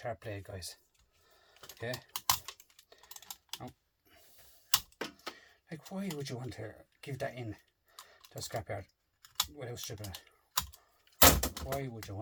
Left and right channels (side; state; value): both; identical; correlation 1.00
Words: blade, guys. Okay. Now, like, why would you want to give that in to a scrapyard without stripping it? Why would you